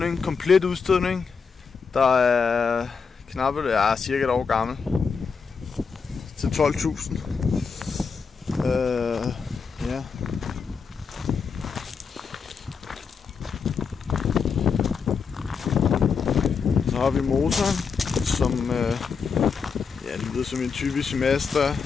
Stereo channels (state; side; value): quieter; right; 5.6 dB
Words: komplet udstødning. Der er knappe, cirka et år gammel. Til 12.000. Ja. Så har vi motoren, som lyder som en typisk Mazda